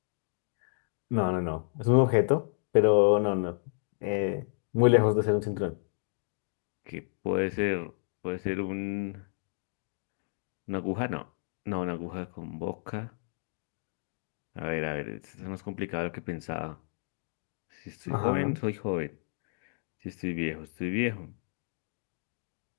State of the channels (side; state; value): right; silent; digital silence